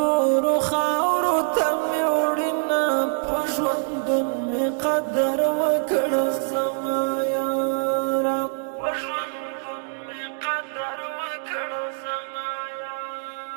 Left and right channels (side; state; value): left; silent; 62 dB below the other